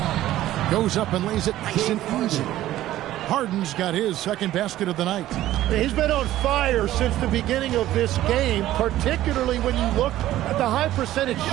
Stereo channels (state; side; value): quieter; left; 14.2 dB